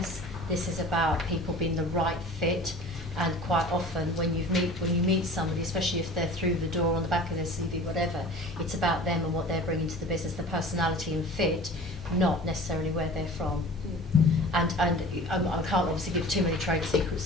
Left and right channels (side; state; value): both; normal; correlation 0.41